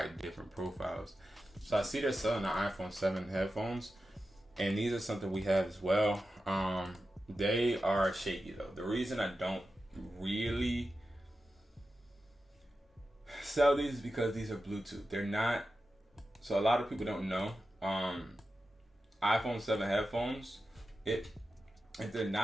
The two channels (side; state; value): both; normal; correlation 0.92